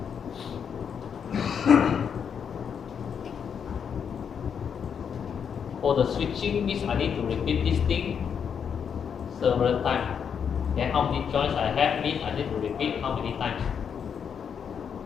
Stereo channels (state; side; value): quieter; right; 7.3 dB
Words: For the switching means I need to repeat this thing several times. Then how many joints I have means I need to repeat how many times.